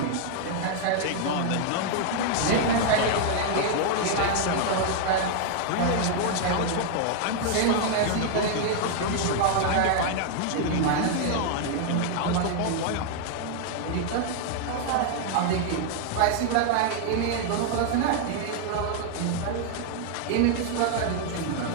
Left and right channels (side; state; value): both; different; correlation 0.00